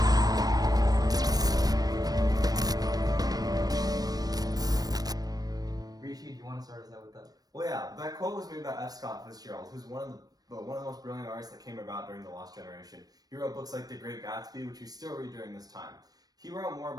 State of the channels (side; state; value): left; late; 0.19 ms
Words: Rishi, do you want to start us out with that? Well, yeah, that quote was made by F. Scott Fitzgerald, who's one of the most brilliant artists that came about during the Lost Generation. He wrote books like The Great Gatsby, which we still read during this time. He wrote more